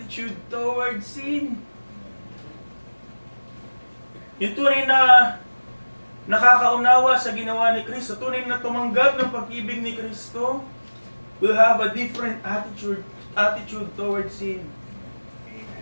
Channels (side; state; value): both; inverted; correlation -1.00